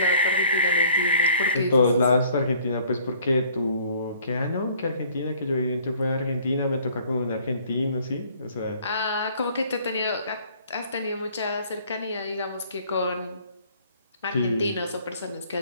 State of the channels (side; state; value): both; inverted; correlation -0.56